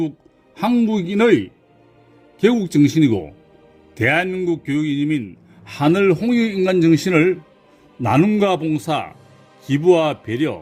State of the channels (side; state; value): both; identical; correlation 1.00